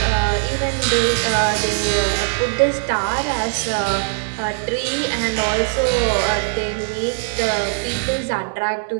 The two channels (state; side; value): silent; left; digital silence